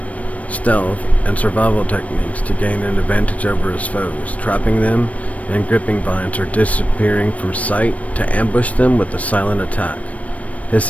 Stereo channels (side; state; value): right; late; 0.067 ms